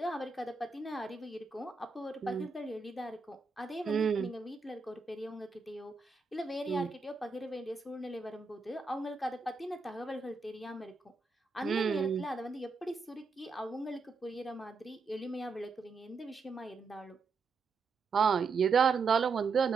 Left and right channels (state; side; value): quieter; left; 4.5 dB